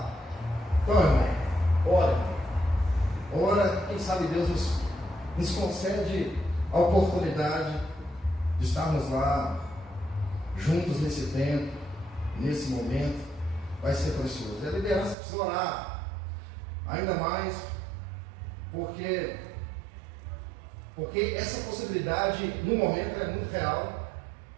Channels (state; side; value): drops out; left; at 15.2 s